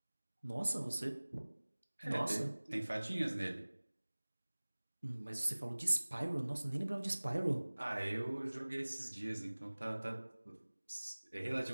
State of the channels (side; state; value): both; inverted; correlation -1.00